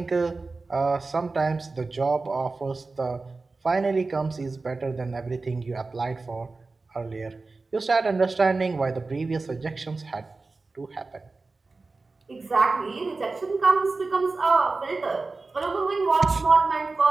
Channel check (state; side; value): quieter; left; 3.7 dB